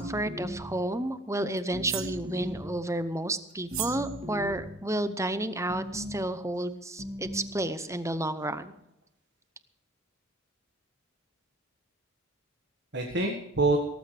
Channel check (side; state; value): both; normal; correlation 0.52